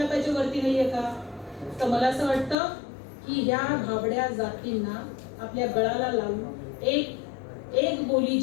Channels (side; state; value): right; drops out; at 2.6 s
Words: वरती नाहीये का? तर मला असं वाटतं की ह्या भाबड्या जातींना आपल्या गळाला लावून एक बोली